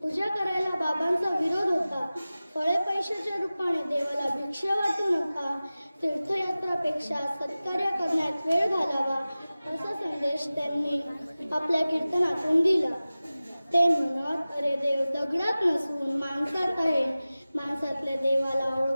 करायला बाबांचा विरोध होता. फळे पैशाच्या रूपाने देवाला भिक्षा वाटू नका, तीर्थयात्रापेक्षा सत्कार्य करण्यात वेळ घालावा असा संदेश त्यांनी आपल्या कीर्तनातून दिला. ते म्हणत, अरे देव दगडात नसून माणसात आहे, माणसातल्या देवाला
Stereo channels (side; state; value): both; inverted; correlation -0.97